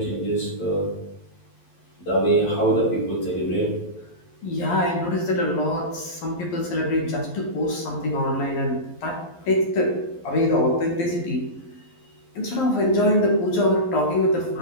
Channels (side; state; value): right; late; 11 ms